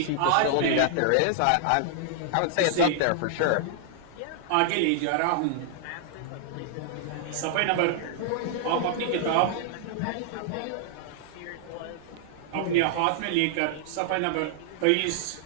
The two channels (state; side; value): different; both; correlation -0.01